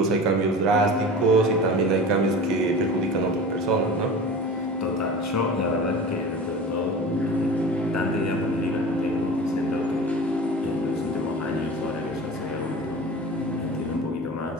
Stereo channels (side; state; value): both; normal; correlation 0.35